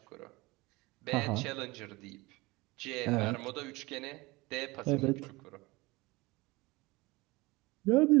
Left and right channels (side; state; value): left; quieter; 22.5 dB